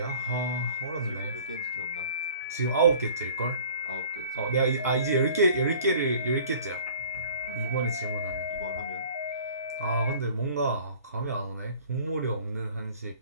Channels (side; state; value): both; inverted; correlation -0.49